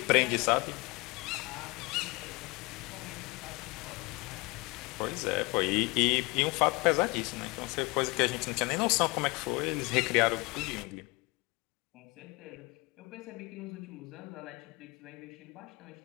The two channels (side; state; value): right; quieter; 25.9 dB